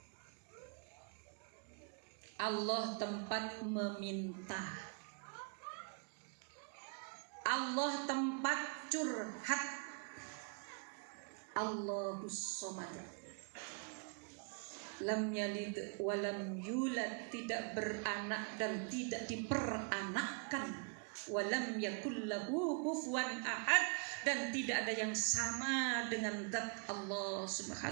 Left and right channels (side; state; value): left; quieter; 38.7 dB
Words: Allah tempat meminta, Allah tempat curhat. Allahus Samad, lam yalid walam yulad, tidak beranak dan tidak diperanakkan, walam yakul lahu kufuwan ahad, dan tidak ada yang sama dengan zat Allah